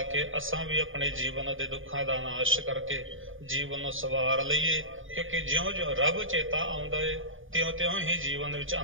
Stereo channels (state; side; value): late; left; 0.58 ms